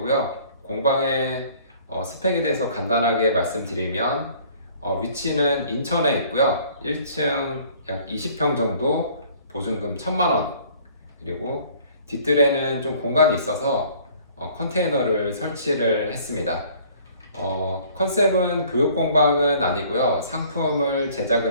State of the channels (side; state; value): both; inverted; correlation -0.55